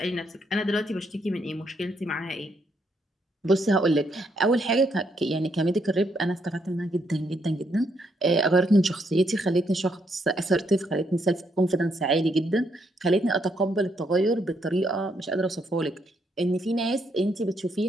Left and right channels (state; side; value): normal; both; correlation 0.75